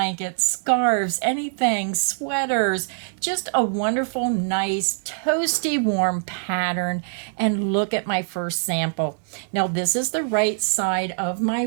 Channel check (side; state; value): left; silent; 63 dB below the other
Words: scarves, anything, sweaters, just a wonderful, nice, toasty warm pattern. And look at my first sample. Now this is the right side of